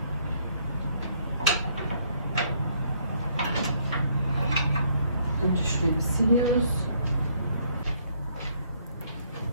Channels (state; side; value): inverted; both; correlation -0.68